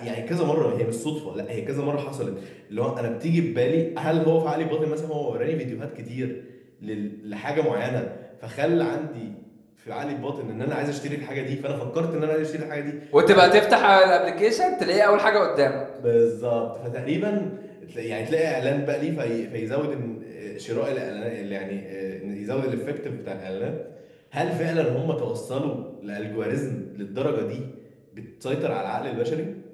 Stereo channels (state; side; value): identical; both; correlation 1.00